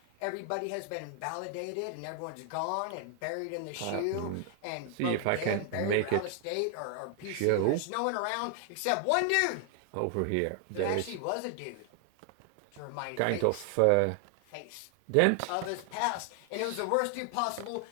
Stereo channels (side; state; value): both; different; correlation 0.00